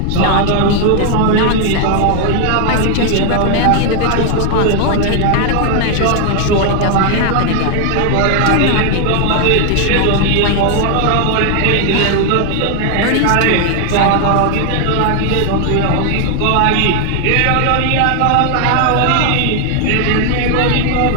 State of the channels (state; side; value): different; both; correlation 0.00